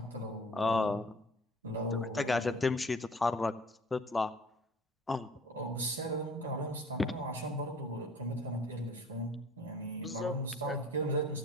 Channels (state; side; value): normal; both; correlation 0.49